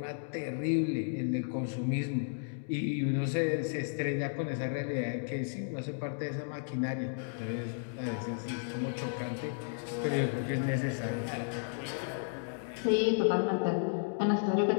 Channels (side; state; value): right; silent; digital silence